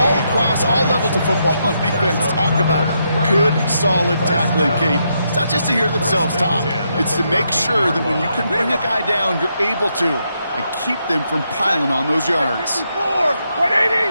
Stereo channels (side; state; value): both; inverted; correlation -0.80